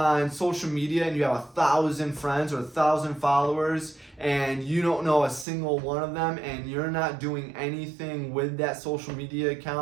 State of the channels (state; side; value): drops out; left; at 5.5 s